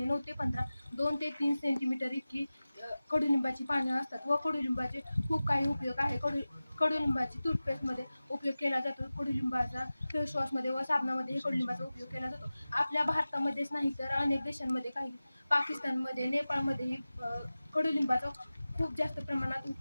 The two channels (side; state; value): both; inverted; correlation -0.96